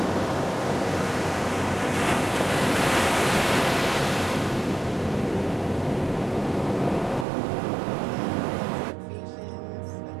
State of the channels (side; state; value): left; drops out; at 7.2 s